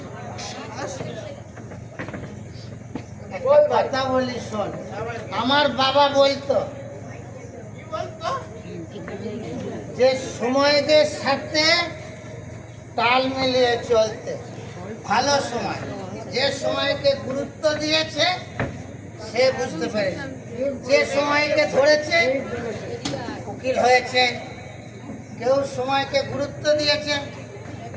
একটা কথা বলি শোন। আমার বাবা বলতো যে সময়দের সাথে তাল মিলিয়ে চলতে। ভালো সময়, যে সময়কে গুরুত্ব দিয়েছে সে বুঝতে পেরেছে, যে সময়কে ধরেছে উকিল হয়েছে, কেউ সময়কে গুরুত্ব দিয়েছে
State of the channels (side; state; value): both; identical; correlation 1.00